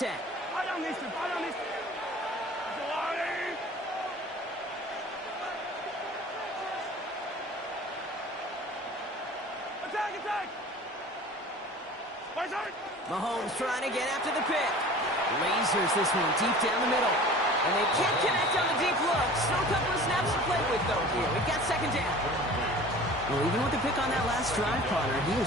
Mahomes trying to get after the pick. Lasers this one deep down the middle. And they can't connect on the deep look. Still a couple of snaps to play with, though, here. We've got 2nd down. Well, even with the pick on that last drive, Connor, he was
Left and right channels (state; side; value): normal; both; correlation 0.42